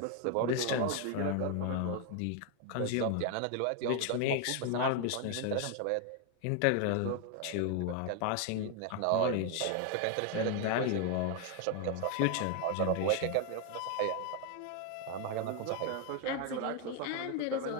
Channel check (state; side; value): different; both; correlation 0.01